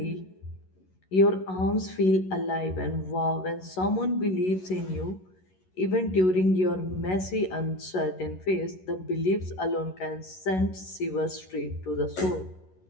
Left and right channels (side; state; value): right; late; 11 ms